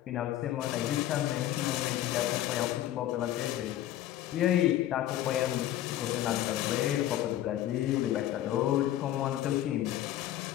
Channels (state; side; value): quieter; right; 12.9 dB